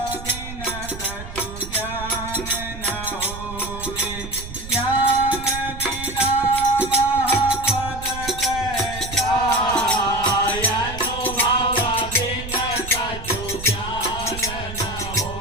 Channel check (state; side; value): noise; right; rumble, 11 dB below the sound